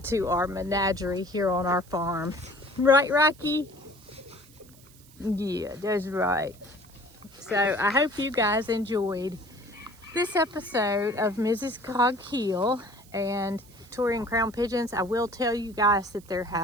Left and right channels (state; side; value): noise; right; hiss, 25 dB below the sound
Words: to our menagerie here on our farm. Right, Rocky? Yeah, that's right. So I hope you guys enjoyed this episode of Mrs. Cog Hill and Victorian Crown Pigeons. I will tell you guys that there